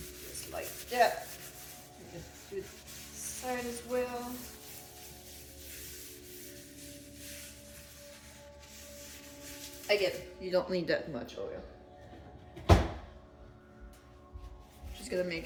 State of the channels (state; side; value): identical; both; correlation 1.00